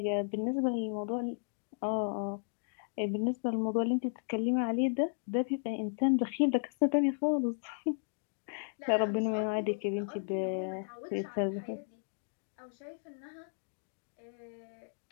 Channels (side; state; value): right; silent; digital silence